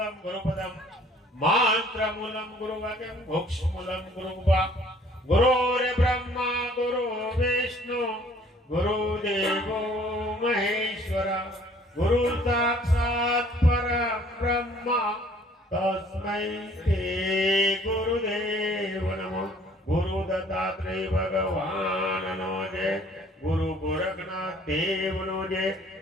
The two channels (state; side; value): normal; both; correlation 0.57